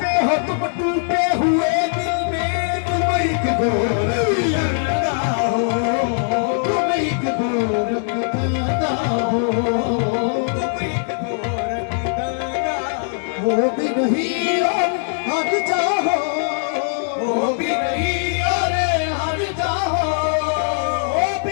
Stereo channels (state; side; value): silent; right; digital silence